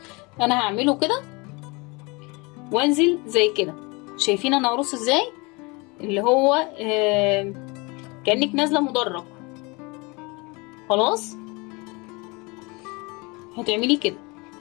انا هعمله كده وانزل زي كده. شايفين انا هرص ازاي؟ اللي هو كأنك نازله مدرج. خلاص. هتعملي كده.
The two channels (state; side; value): quieter; right; 27.2 dB